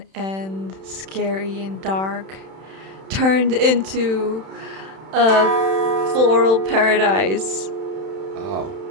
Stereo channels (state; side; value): late; left; 31 ms